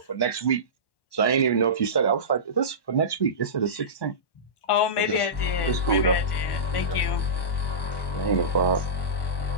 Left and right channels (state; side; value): late; right; 1.1 ms